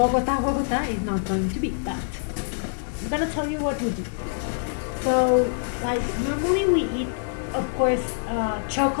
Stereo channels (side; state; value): right; silent; 62 dB below the other